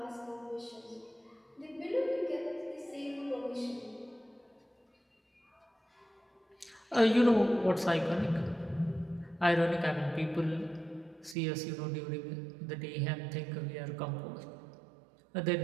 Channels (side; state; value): left; drops out; at 11.4 s